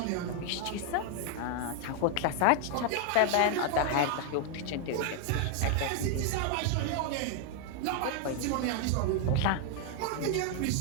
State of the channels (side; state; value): both; different; correlation 0.00